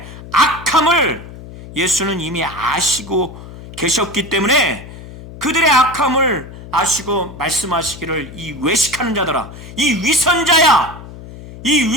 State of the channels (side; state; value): left; noise; hum, 15 dB below the sound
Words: 악함을 예수는 이미 아시고 계셨기 때문에 그들의 악함을 아시고 말씀하시기를 이 외식하는 자들아, 이 위선자야, 이